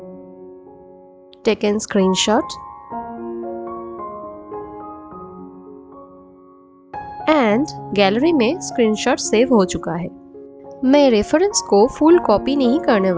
Taken screenshot and gallery में स्क्रीनशॉट सेव हो चुका है। मैं रेफरेंस को फुल कॉपी नहीं करने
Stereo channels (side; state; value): both; identical; correlation 1.00